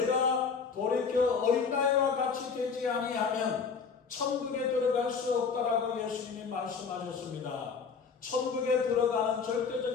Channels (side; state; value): right; quieter; 5.6 dB